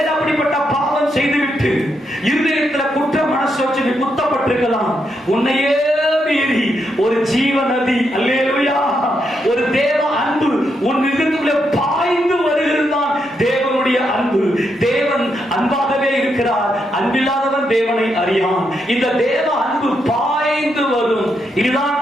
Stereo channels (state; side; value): normal; both; correlation 0.81